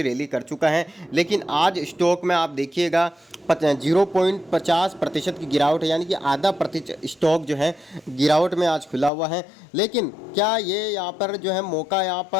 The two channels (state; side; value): drops out; right; at 9.1 s